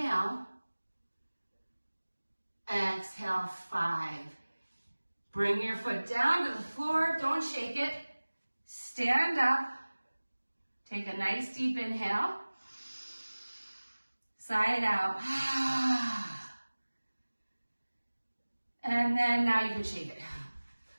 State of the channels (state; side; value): inverted; both; correlation -1.00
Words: Exhale, 5. Bring your foot down to the floor. Don't shake it. Stand up. Take a nice deep inhale. Sigh it out. And then now you can shake it.